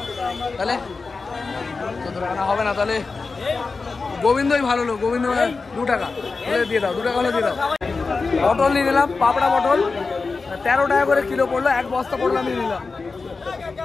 তাহলে 14 টাকা না হবে না, তাহলে গোবিন্দই ভালো লোক। গোবিন্দ 2 টাকা হলে দিয়ে দাও। 2 টাকা হলে দিয়ে দাও। পটল নিয়ে নিলাম, পাপড়া পটল 13 টাকা করে কিলো পড়লো, এক বস্তা পটল আমি নিলাম।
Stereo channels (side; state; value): right; quieter; 4.2 dB